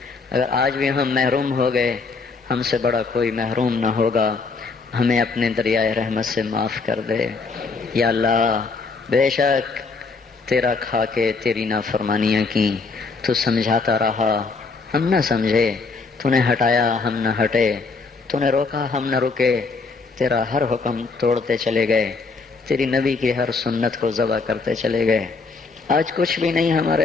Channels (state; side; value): quieter; right; 4.4 dB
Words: اگر آج بھی ہم محروم ہو گئے، ہم سے بڑا کوئی محروم نہ ہوگا، ہمیں اپنے دریائے رحمت سے معاف کر دے۔ یا اللہ بے شک تیرا کھا کے تیری نافرمانیاں کی، تو سمجھاتا رہا ہم نہ سمجھے، تو نے ہٹایا ہم نہ ہٹے، تو نے روکا ہم نہ رکے، تیرا ہر حکم توڑتے چلے گئے، تیری نبی کی ہر سنت کو ذبح کرتے چلے گئے۔ آج کچھ بھی نہیں